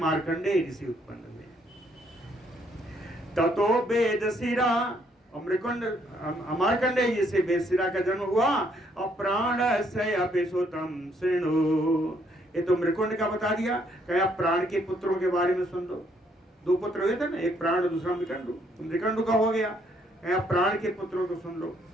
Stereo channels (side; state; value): both; normal; correlation 0.69